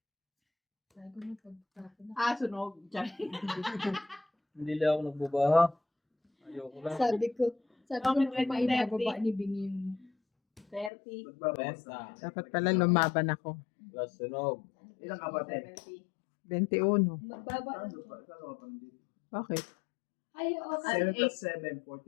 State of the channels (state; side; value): drops out; right; at 10.9 s